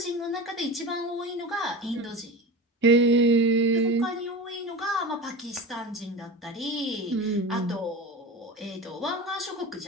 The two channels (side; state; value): both; normal; correlation 0.29